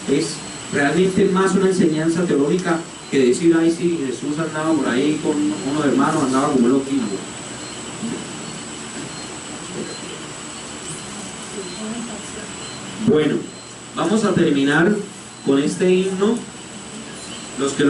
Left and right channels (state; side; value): identical; both; correlation 1.00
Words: Es realmente más una enseñanza teológica que decir, ay sí, Jesús andaba por ahí con unos hermanos, andaba como loquillo. Bueno, vamos a terminar con este himno. Los que